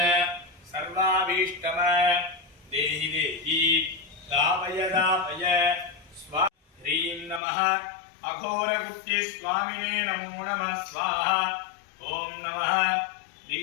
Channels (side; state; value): right; drops out; at 7.4 s